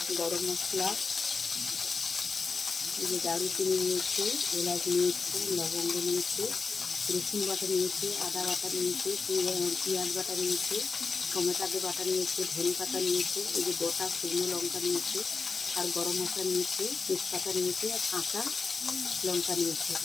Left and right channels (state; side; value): quieter; right; 4.6 dB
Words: গরম মশলা, এই যে দারুচিনি নিয়েছি, এলাচ নিয়েছি, লবঙ্গ নিয়েছি, রসুন বাটা নিয়েছি, আদা বাটা নিয়েছি, পেঁয়াজ বাটা নিয়েছি, টমেটো বাটা নিয়েছি, ধনে পাতা নিয়েছি, এই যে গোটা শুকনো লঙ্কা নিয়েছি, আর গরম মশলা নিয়েছি, তেজপাতা নিয়েছি, আর কাঁচা লঙ্কা নিয়েছি।